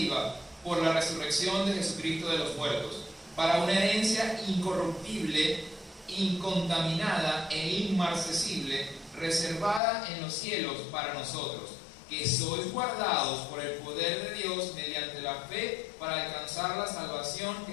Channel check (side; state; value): right; drops out; at 9.8 s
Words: por la resurrección de Jesucristo de los muertos, para una herencia incorruptible incontaminada e inmarcesible, reservada en los cielos para nosotros, que sois guardados por el poder de Dios mediante la fe para alcanzar la salvación